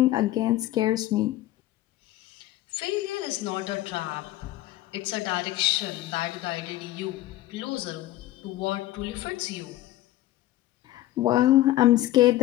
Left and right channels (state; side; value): quieter; right; 15.3 dB